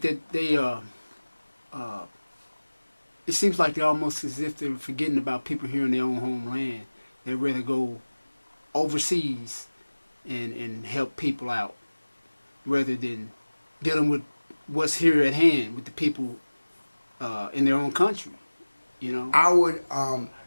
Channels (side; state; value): both; inverted; correlation -1.00